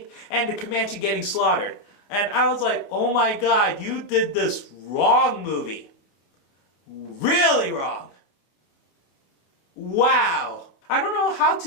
and the Comanche getting slaughtered. And I was like, oh my god, you did this wrong, movie. Really wrong. Wow. I don't know how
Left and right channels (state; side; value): late; right; 29 ms